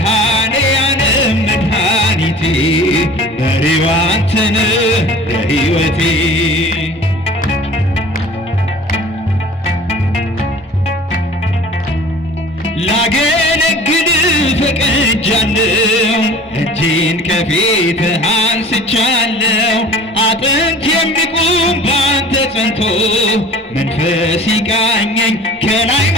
መድኃኒቴ መሪው አንተ ነህ ለሕይወቴ ላገለግል ፈቅጃለሁ፣ እጄን ከፊትህ አንስቻለሁ። አጥንት የሚቆም ባንተ ጸንቶ መንፈስ ይቃኘኝ ከላይ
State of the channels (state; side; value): normal; both; correlation 0.44